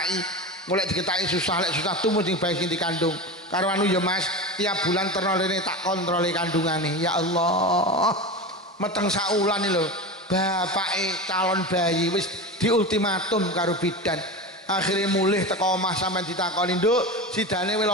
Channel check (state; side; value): normal; both; correlation 0.25